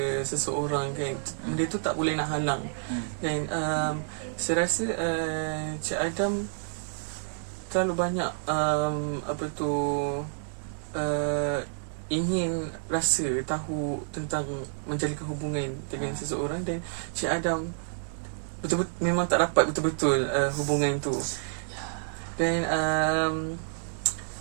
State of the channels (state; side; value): silent; left; digital silence